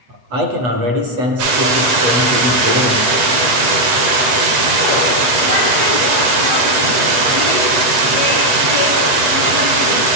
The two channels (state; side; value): late; left; 8.1 ms